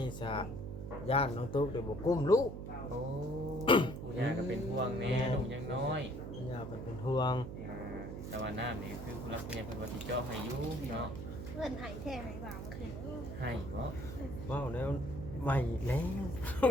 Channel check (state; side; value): noise; right; hum, 8 dB below the sound